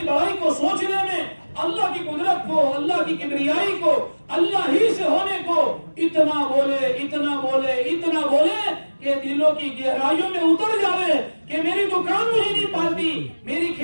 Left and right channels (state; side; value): inverted; both; correlation -1.00